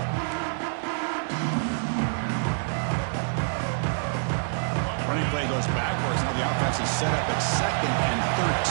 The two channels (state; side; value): silent; left; digital silence